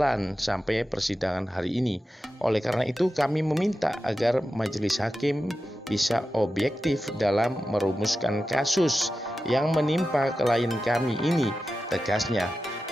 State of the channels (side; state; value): both; normal; correlation 0.92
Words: sampai persidangan hari ini. Oleh karena itu kami meminta agar majelis hakim bisa objektif dalam merumuskan kasus yang menimpa klien kami ini, tegasnya.